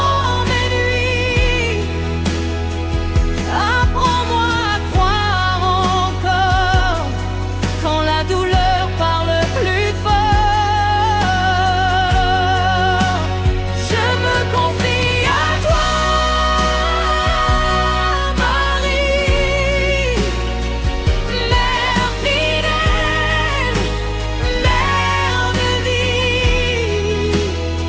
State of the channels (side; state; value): both; identical; correlation 1.00